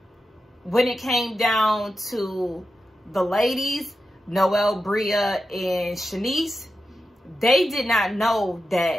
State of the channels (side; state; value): both; normal; correlation 0.90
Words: it came down to the ladies, Noelle, Bria, and Shanice, they did not know